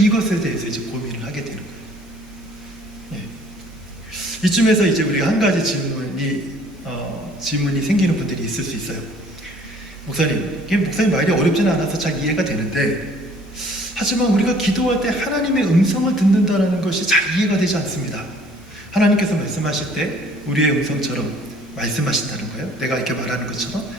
대해서 이제 고민을 하게 되는 거예요. 예. 이쯤에서 이제 우리가 한 가지 질문이 생기는 분들이 있을 수 있어요. 목사님 말이 어렵지는 않아서 잘 이해가 되는데 하지만 우리가 기도할 때 하나님의 음성을 듣는다는 것이 잘 이해가 되지 않습니다. 하나님께서 말씀하실 때 우리의 음성처럼 말씀하신다는 거예요? 내가 이렇게 말하는 것처럼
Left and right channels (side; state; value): both; normal; correlation 0.56